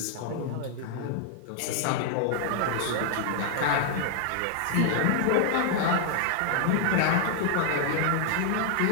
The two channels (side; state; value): both; different; correlation 0.00